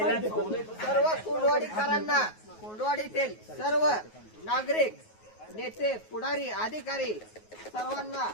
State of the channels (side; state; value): right; late; 9.4 ms